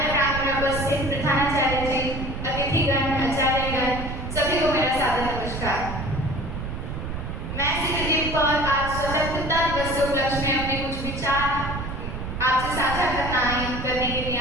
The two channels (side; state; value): right; noise; rumble, 6 dB below the sound